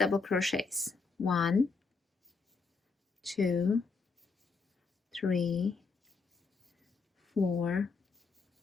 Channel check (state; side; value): quieter; right; 4.5 dB